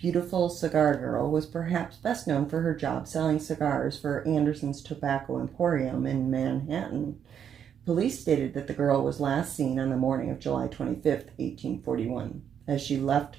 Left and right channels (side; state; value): left; quieter; 8.4 dB